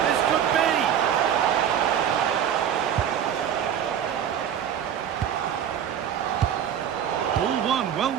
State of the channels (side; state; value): left; quieter; 9.2 dB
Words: This could be. All one, well